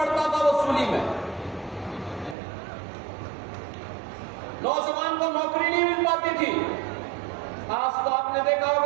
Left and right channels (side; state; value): left; drops out; at 2.4 s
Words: था वसूली में। नौजवान को नौकरी नहीं मिल पाती थी। आज तो आपने देखा